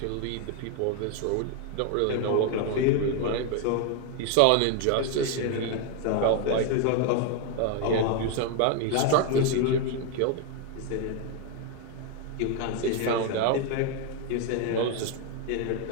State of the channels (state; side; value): different; both; correlation 0.01